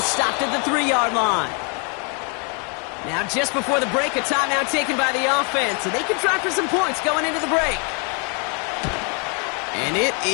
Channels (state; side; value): quieter; right; 36.5 dB